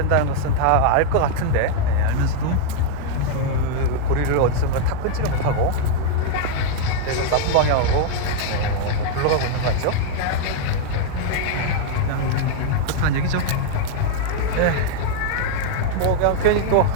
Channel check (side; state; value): both; different; correlation 0.00